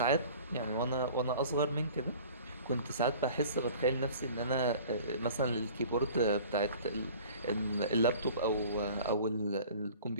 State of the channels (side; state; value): both; inverted; correlation -0.45